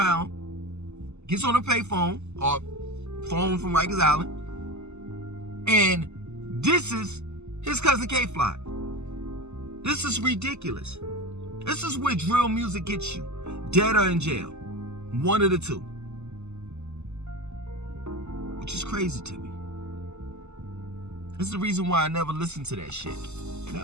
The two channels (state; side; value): late; left; 0.82 ms